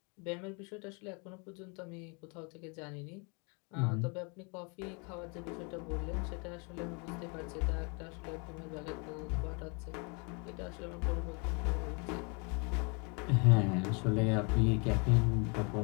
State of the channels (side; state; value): right; quieter; 33.4 dB